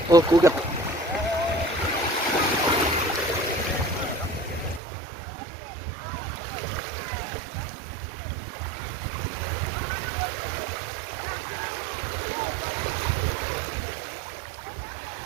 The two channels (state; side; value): drops out; left; at 4.8 s